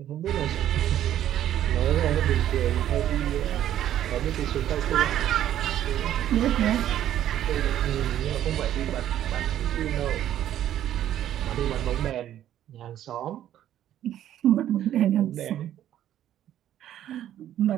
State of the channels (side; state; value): left; quieter; 11.6 dB